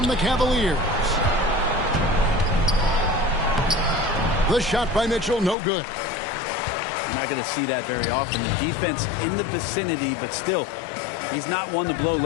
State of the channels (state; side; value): drops out; right; at 5.6 s